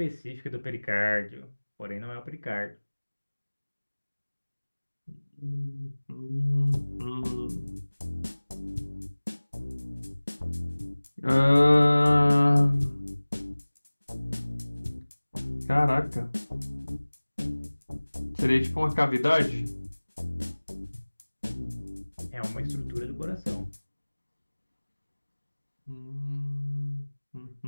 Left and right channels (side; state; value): both; inverted; correlation -1.00